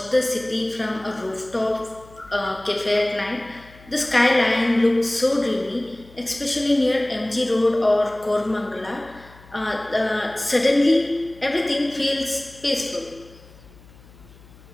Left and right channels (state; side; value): noise; left; hum, 23 dB below the sound